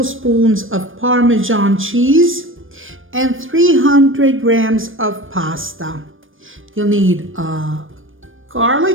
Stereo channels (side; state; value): left; late; 0.59 ms